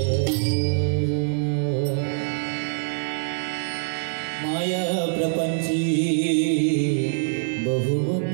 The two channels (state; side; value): silent; left; 56 dB below the other